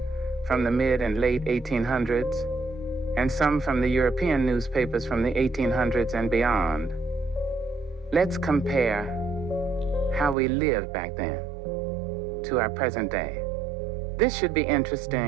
from the mid and late 1800s, and some from the European newspapers from the 1800s and beyond. Let's compare how we lived back then to our present day. This should be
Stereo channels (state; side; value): drops out; left; at 10.4 s